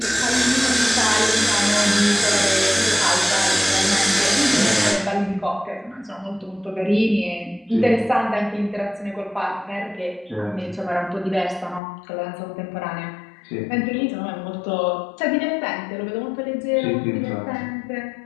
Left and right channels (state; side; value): drops out; right; at 11.8 s